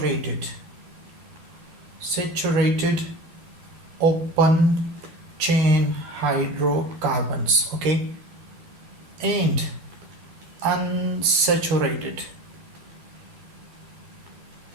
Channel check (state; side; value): late; left; 12 ms